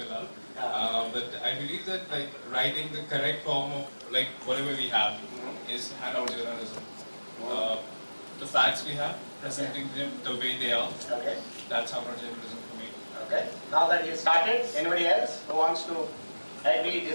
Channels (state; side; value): inverted; both; correlation -1.00